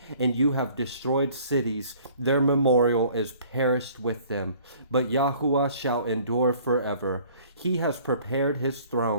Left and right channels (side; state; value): both; inverted; correlation -0.54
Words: and you have destroyed cities. Their memorial is perished with them. But Yahuwah shall endure forever. He has prepared his